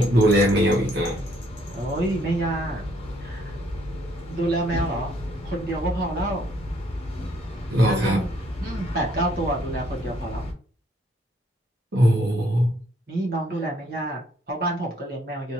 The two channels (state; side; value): normal; both; correlation 0.67